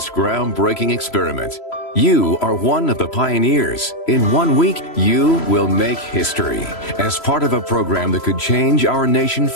groundbreaking experiment. You are one of the pioneers. In 1 week, you will make history. As part of a program that could change our nation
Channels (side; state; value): right; late; 3.0 ms